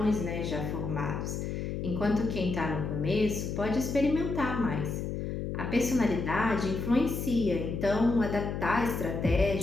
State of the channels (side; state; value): left; noise; hum, 3 dB below the sound